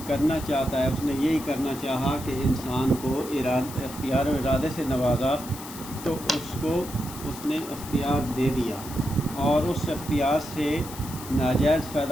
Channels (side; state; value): left; noise; hiss, 13 dB below the sound